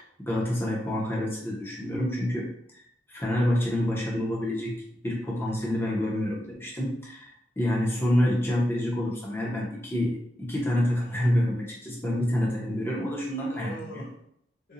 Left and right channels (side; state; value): both; normal; correlation 0.87